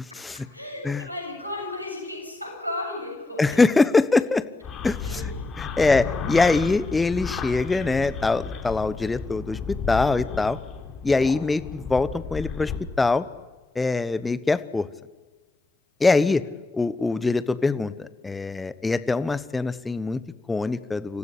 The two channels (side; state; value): right; quieter; 3.3 dB